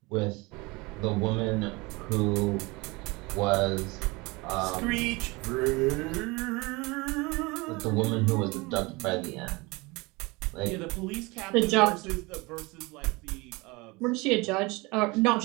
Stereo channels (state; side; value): quieter; left; 24.7 dB